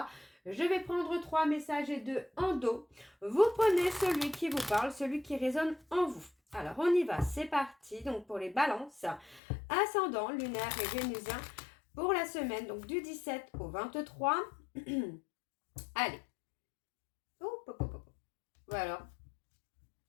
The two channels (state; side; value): drops out; right; at 9.4 s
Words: Je vais prendre 3 messages et 2 en dos. Vous prenez celui qui vous parle, celui qui résonne en vous. Alors on y va, c'est parti. Donc pour les balances, ascendant, lunaire et vénusien pour la semaine donc du 17 au 23. Allez. Voilà.